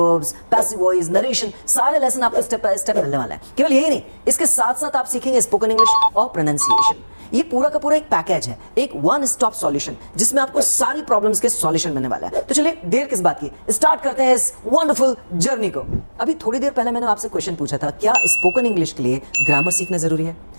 passive voice, narration, सारे लेसन आपको स्टेप बाय स्टेप मिलने वाले हैं। केवल यही नहीं, इसके साथ साथ आप सीखेंगे स्पोकन इंग्लिश और प्रोनाउंसिएशन। ये पूरा का पूरा एक पैकेज है, एक वन स्टॉप सॉल्यूशन, जिसमें आपको सारी प्रॉब्लम्स के सॉल्यूशन मिलने वाला है। तो चलिए देर किस बात की, स्टार्ट करते हैं इस वंडरफुल जर्नी को। अभी थोड़ी देर पहले मैंने आपसे क्वेश्चन पूछा था, क्या स्पोकन इंग्लिश के लिए ग्रामर सीखना जरूरी है?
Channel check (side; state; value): both; inverted; correlation -1.00